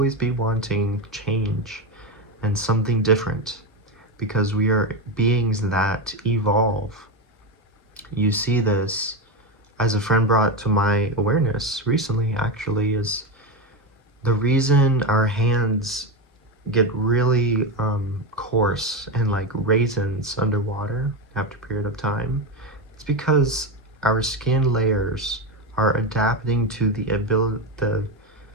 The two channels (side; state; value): both; normal; correlation 0.14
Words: be wanting change and something different, because we are beings that evolve. You see this, as a friend brought to my awareness recently, actually, is the reason our hands get really coarse and like raisins underwater after a period of time. It's because our skin layers are adapting to the